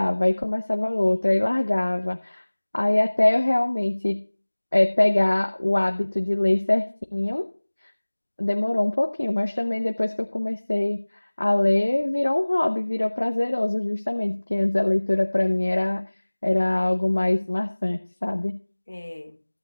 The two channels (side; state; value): both; inverted; correlation -1.00